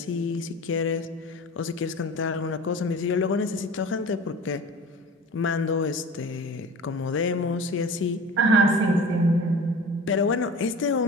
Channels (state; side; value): normal; both; correlation 0.38